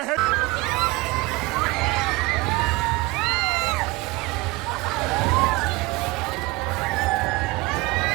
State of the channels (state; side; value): quieter; left; 22.6 dB